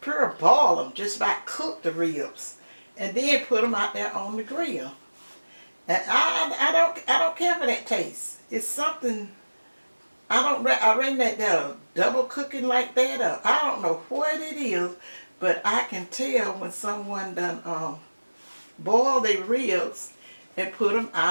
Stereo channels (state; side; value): inverted; both; correlation -1.00